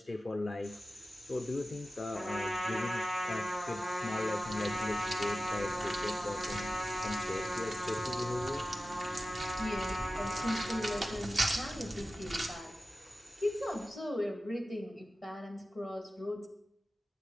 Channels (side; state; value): both; normal; correlation 0.95